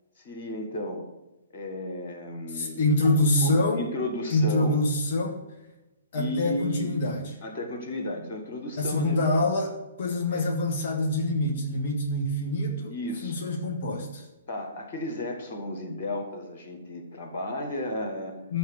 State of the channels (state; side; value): inverted; both; correlation -0.50